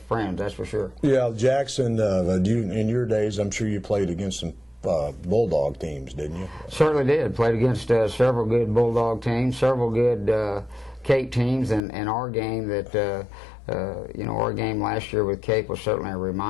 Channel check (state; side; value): drops out; right; at 11.8 s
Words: friends, that's for sure. Yeah, Jackson, in your days, I'm sure you played against some Bulldog teams, didn't you? Certainly did. Played against several good Bulldog teams, several good Cape teams, and our game that our game last year with Cape was certainly a